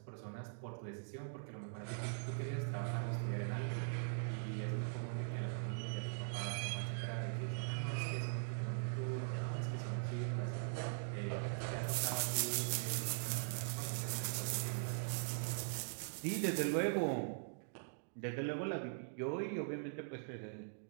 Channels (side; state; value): left; silent; digital silence